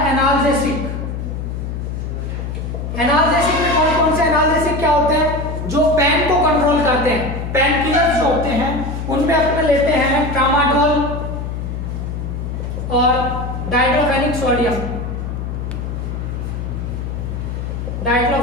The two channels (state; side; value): noise; left; hum, 5 dB below the sound